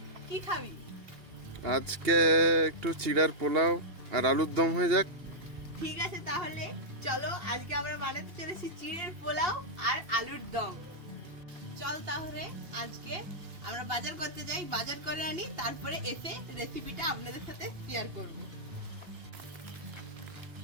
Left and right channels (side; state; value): left; late; 2.8 ms